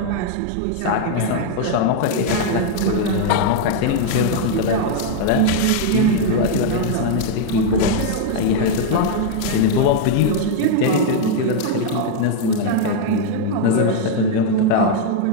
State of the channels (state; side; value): different; both; correlation 0.00